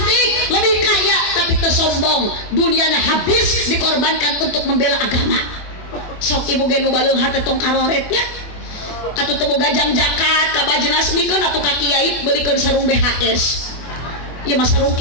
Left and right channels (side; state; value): right; late; 24 ms